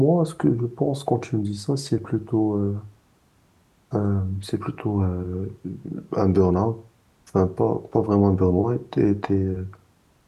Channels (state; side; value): identical; both; correlation 1.00